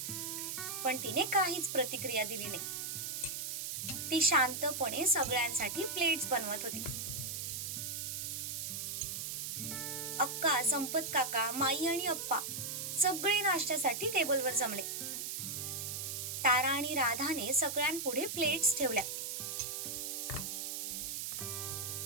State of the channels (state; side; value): noise; right; hiss, 4 dB below the sound